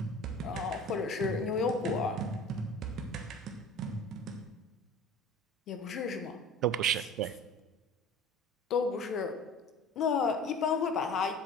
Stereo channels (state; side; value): normal; both; correlation 0.41